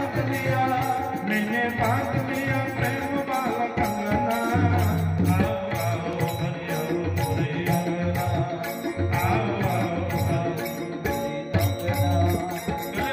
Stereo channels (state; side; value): identical; both; correlation 1.00